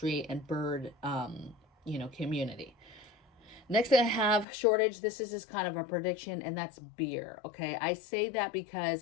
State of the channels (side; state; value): right; drops out; at 4.5 s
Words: and bird, community. Next thing I have, shortage. This is just kind of a prediction, and that's beer. Okay. I say that